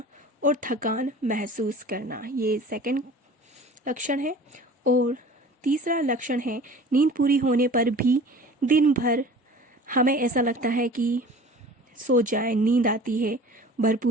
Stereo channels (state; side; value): normal; both; correlation 0.43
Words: और थकान महसूस करना। ये सेकंड लक्षण है। और तीसरा लक्षण है नींद पूरी होने पर भी दिन भर हमें ऐसा लगता है कि सो जाए, नींद आती है,